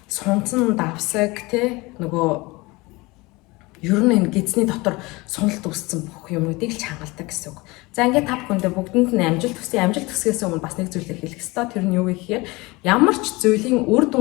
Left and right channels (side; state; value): right; quieter; 23.3 dB